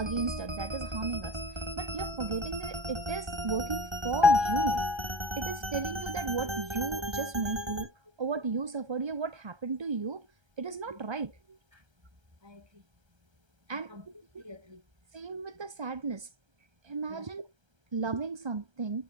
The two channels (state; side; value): late; left; 1.3 ms